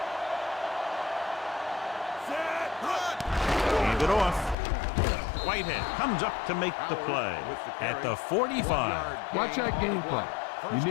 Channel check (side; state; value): right; drops out; at 4.5 s